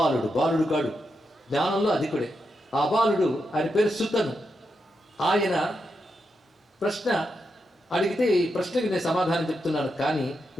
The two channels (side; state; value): both; normal; correlation 0.85